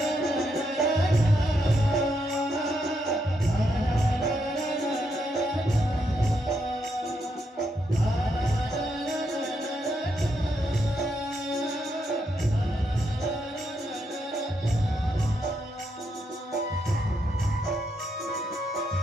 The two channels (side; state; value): both; normal; correlation 0.79